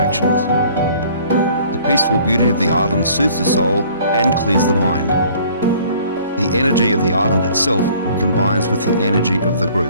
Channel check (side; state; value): both; inverted; correlation -0.55